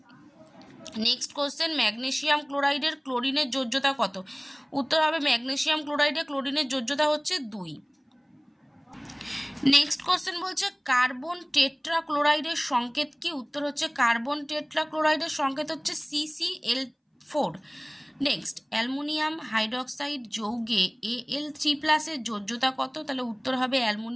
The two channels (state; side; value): identical; both; correlation 1.00